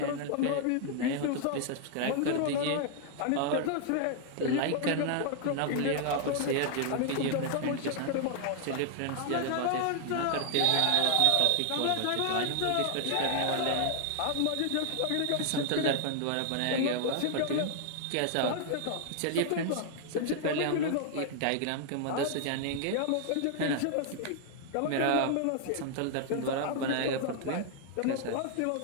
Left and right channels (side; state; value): both; different; correlation 0.00